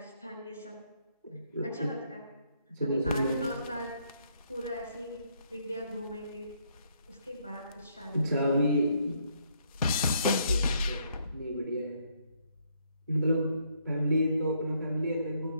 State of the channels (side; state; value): both; inverted; correlation -0.71